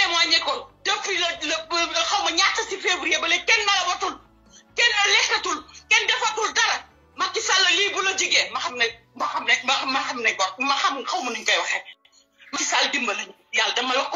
ko depuis le xaw ma ñaata si février ba léegi kenn nalawatul kenn lekkatul kenn defatul dara Macky Sall lii bu la jigee ma xam ne xaw ma nuñ koy waxee Macky Sall dimbali yàlla dama la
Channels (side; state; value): both; identical; correlation 1.00